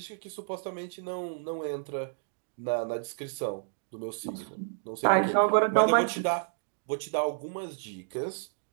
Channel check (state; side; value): silent; left; digital silence